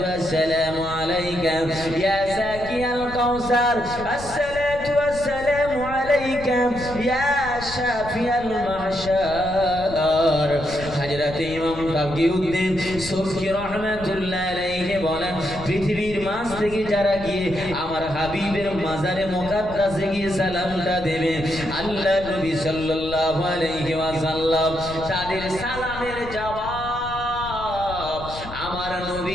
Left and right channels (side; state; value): left; noise; rumble, 13 dB below the sound